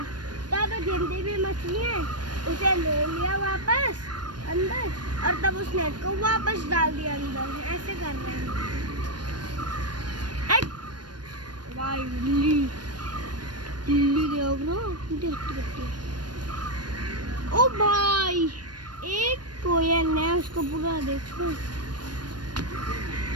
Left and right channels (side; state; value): left; late; 0.70 ms